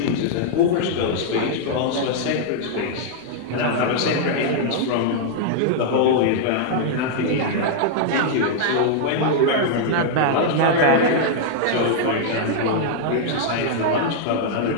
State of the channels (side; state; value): both; different; correlation -0.01